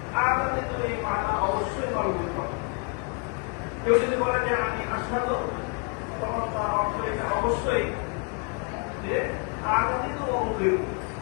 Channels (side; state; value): right; quieter; 33.6 dB